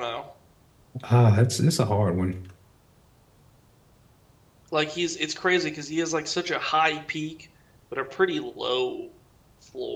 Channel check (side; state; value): both; identical; correlation 1.00